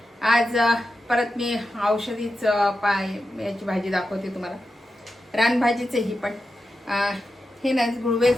आज परत मी औषधीच याची भाजी दाखवते तुम्हाला. रानभाजीचे ही पण हे ना गुळवेल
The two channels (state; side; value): normal; both; correlation 0.90